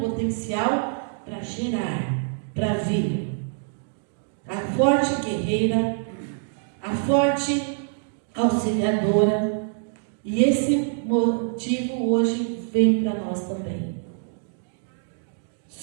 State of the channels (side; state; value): left; silent; digital silence